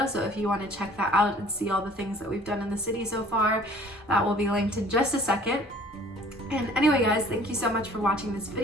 so if you want to check that out and see all the things that we've done in the city so far, that will be linked in just a second. And anyway guys, thank you so much for watching this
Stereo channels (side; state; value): both; normal; correlation 0.52